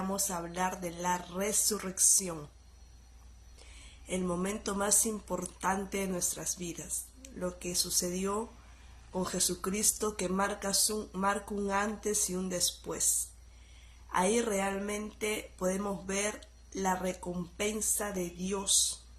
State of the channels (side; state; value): both; identical; correlation 1.00